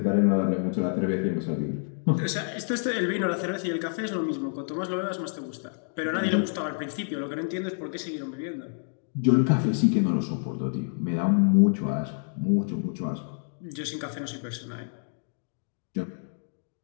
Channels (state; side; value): silent; right; 59 dB below the other